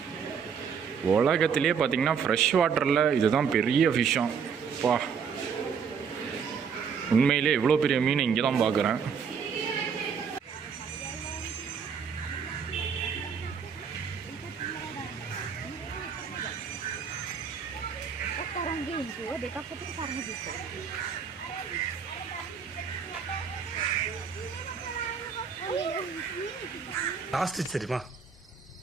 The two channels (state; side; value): quieter; left; 6.5 dB